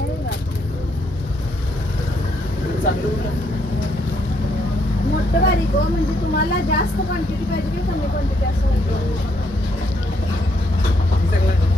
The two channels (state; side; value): normal; both; correlation 0.73